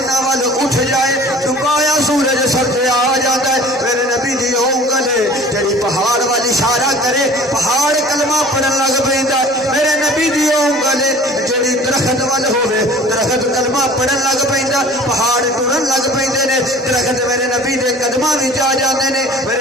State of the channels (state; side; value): normal; both; correlation 0.46